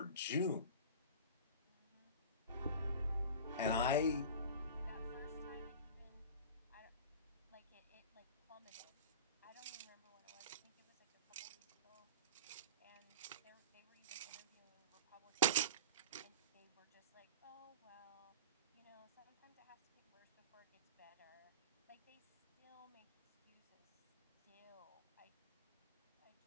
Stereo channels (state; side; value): inverted; both; correlation -0.35